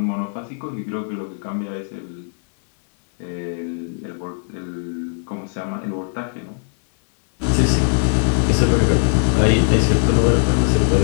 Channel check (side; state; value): right; silent; digital silence